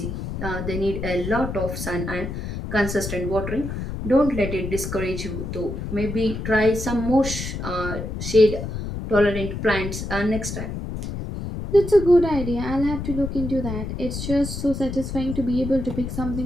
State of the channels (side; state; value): left; noise; rumble, 6 dB below the sound